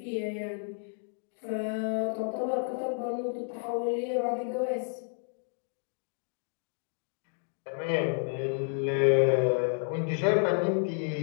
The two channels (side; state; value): right; silent; 57 dB below the other